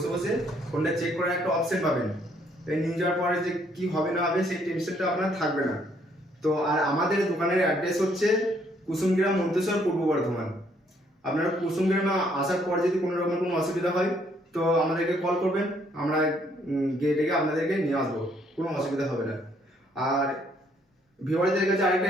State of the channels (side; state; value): both; normal; correlation 0.68